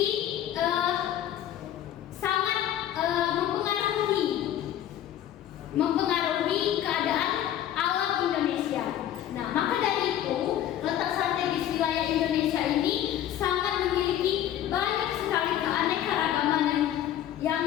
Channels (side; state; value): right; quieter; 11.5 dB